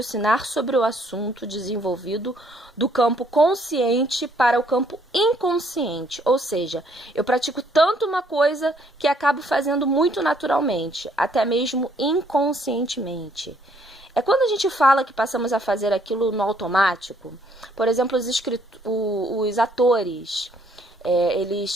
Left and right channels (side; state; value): both; normal; correlation 0.66